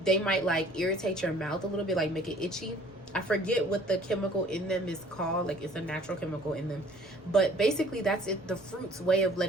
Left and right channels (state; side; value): normal; both; correlation 0.54